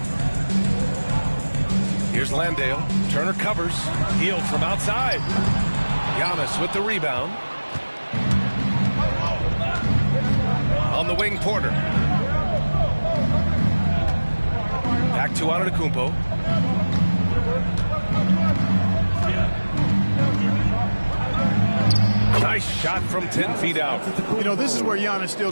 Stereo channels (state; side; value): inverted; both; correlation -1.00